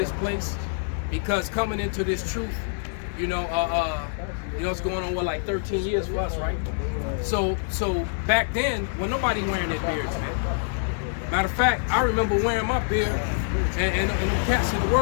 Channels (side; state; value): right; silent; 61 dB below the other